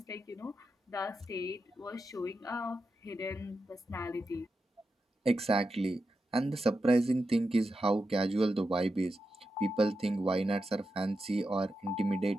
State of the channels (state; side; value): normal; both; correlation 0.89